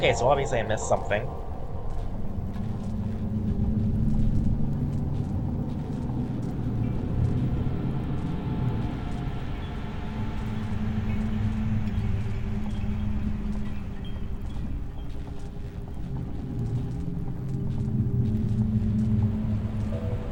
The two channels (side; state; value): both; identical; correlation 1.00